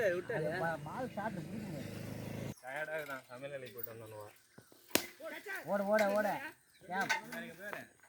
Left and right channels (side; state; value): both; identical; correlation 1.00